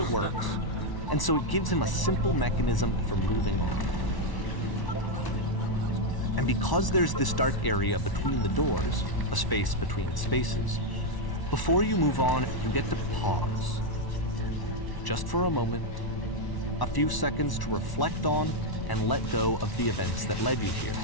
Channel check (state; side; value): late; right; 1.1 ms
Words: works, and so it gives him a simple mechanism for moving on. And because there's this dark area between the doors, a space between spaces, before you move on, you get to pause. Just for a moment, a few seconds to reflect on and let go of the events that led you here.